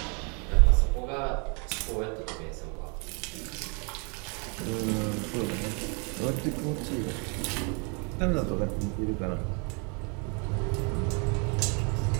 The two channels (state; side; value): quieter; left; 35.0 dB